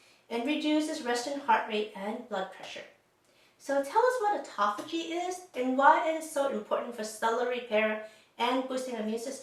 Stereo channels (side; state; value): both; identical; correlation 1.00